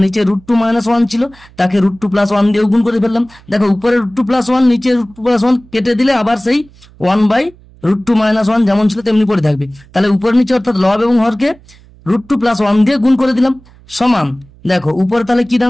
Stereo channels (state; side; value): noise; right; hum, 26 dB below the sound